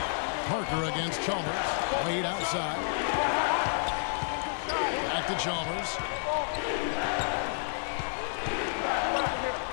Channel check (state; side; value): silent; right; digital silence